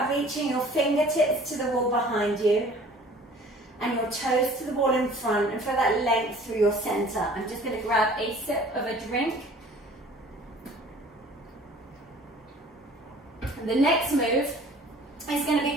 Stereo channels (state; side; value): normal; both; correlation 0.49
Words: reaching your fingertips to the wall behind you and your toes to the wall in front, and feel that length through your center. I'm just going to grab a sip of a drink. And the next move is going to be